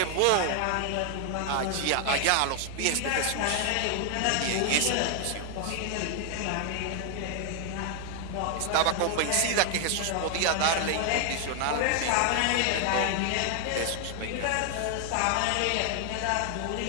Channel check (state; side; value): different; both; correlation 0.00